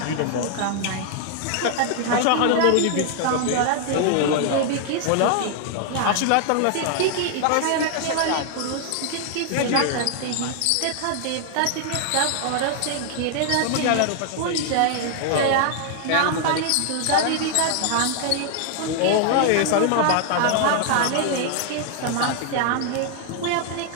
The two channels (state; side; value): different; both; correlation 0.00